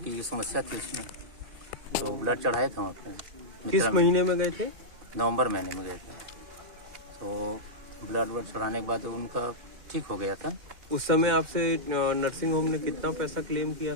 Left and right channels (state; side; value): late; left; 2.1 ms